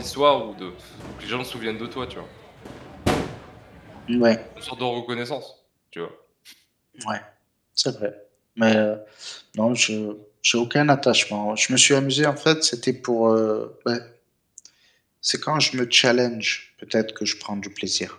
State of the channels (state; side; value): identical; both; correlation 1.00